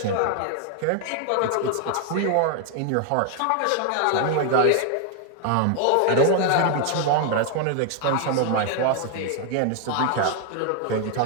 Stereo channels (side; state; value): both; different; correlation 0.00